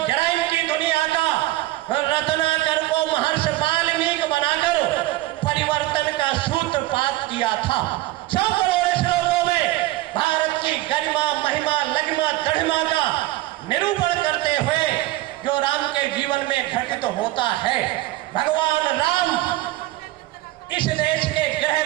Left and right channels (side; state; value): left; quieter; 17.4 dB